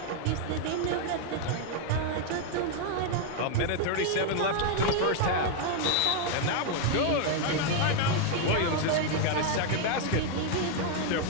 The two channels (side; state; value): both; different; correlation 0.00